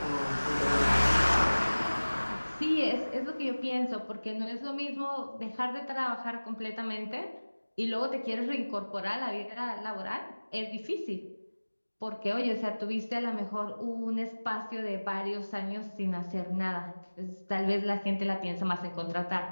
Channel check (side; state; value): both; inverted; correlation -1.00